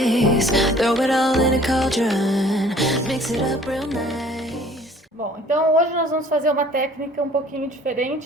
Throw it all in a cauldron, mix it up real nice. Bom, então hoje nós vamos fazer uma técnica um pouquinho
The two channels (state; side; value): normal; both; correlation 0.53